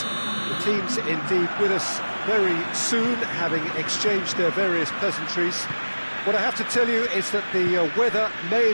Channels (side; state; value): both; inverted; correlation -1.00